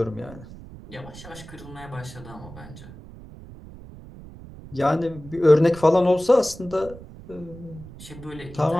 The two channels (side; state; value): right; noise; rumble, 16 dB below the sound